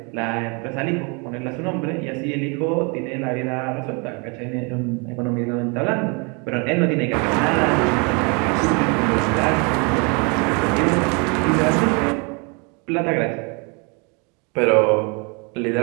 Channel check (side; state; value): left; quieter; 32.4 dB